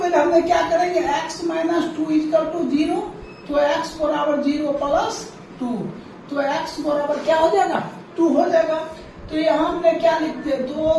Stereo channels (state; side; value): identical; both; correlation 1.00